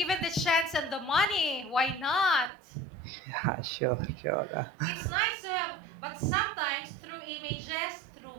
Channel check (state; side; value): drops out; left; at 2.5 s